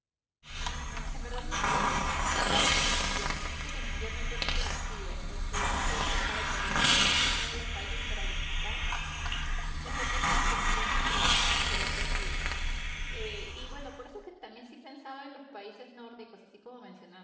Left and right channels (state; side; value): identical; both; correlation 1.00